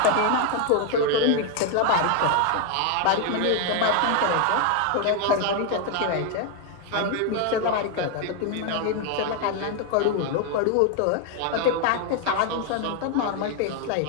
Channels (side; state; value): both; different; correlation 0.00